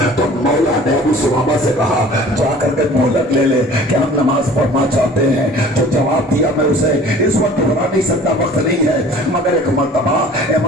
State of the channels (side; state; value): both; normal; correlation 0.47